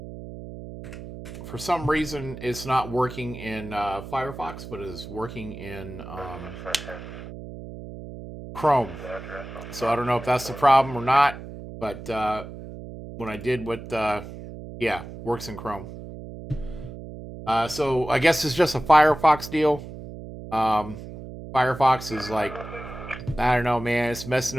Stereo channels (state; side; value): noise; right; hum, 12 dB below the sound